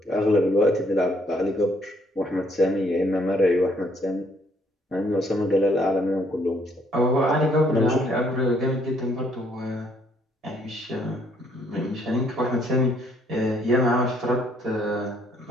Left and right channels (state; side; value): normal; both; correlation 0.67